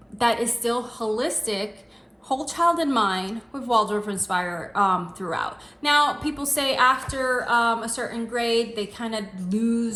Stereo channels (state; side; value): identical; both; correlation 1.00